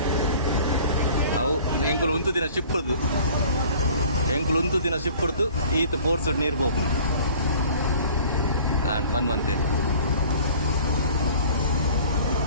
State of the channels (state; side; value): inverted; both; correlation -0.48